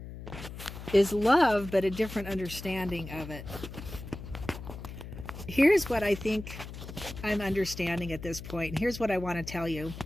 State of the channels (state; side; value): noise; left; hum, 11 dB below the sound